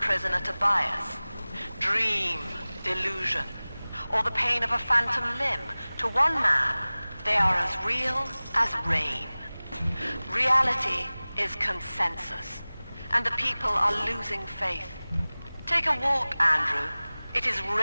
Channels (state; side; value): inverted; both; correlation -0.99